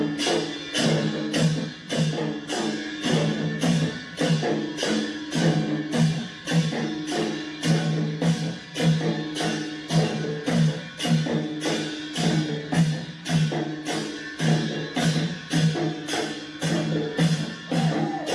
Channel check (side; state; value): both; identical; correlation 1.00